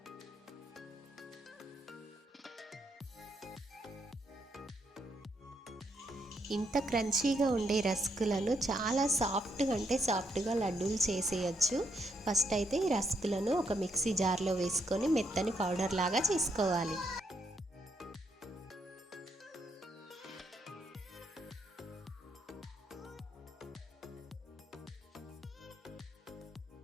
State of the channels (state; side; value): normal; both; correlation 0.75